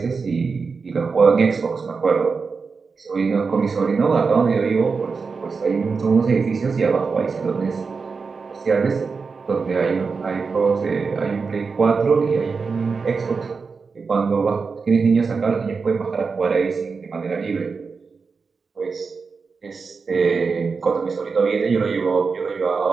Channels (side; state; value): left; quieter; 4.9 dB